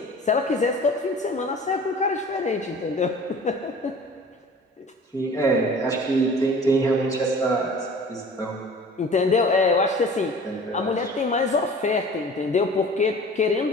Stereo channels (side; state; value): both; normal; correlation 0.44